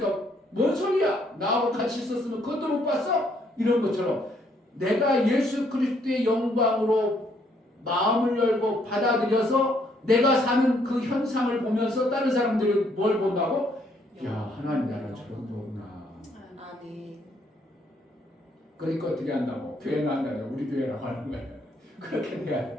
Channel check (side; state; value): both; normal; correlation 0.69